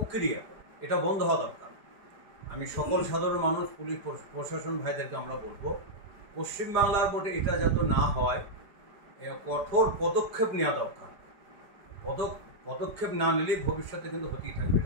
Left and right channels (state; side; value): late; left; 4.9 ms